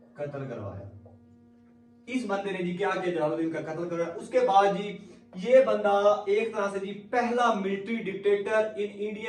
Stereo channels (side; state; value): both; identical; correlation 1.00